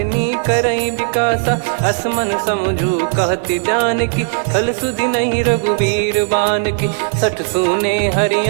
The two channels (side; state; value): left; silent; digital silence